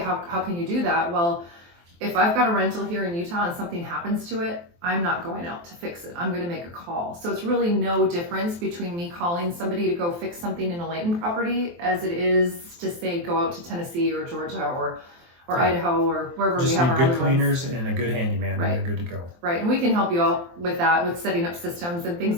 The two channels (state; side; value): late; left; 23 ms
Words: How can you do that? Well, if I've got a rental here in Utah and something happens to it, I'm not going out to fix it. I'm going to make a call. So it's really no difference between me calling somebody to go fix something in a Layton property as it is to say go out to Tennessee or Georgia or Idaho or wherever we have our good cleaners and a good handyman, and you're good to go. Right, and we can help you all with that, with setting up systems and things